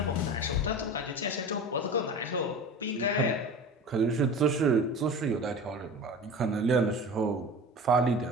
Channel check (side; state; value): both; normal; correlation 0.34